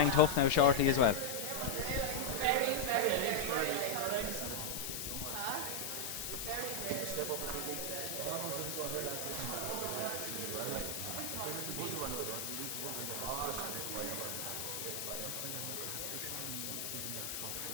tough now shortly as well.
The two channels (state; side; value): noise; left; hiss, 3 dB below the sound